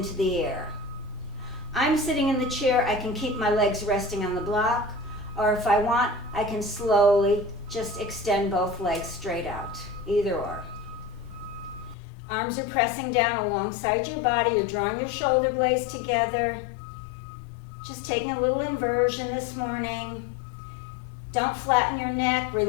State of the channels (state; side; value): drops out; right; at 12.0 s